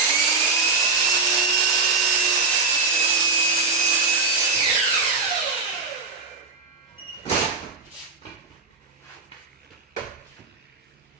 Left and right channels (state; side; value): quieter; left; 4.1 dB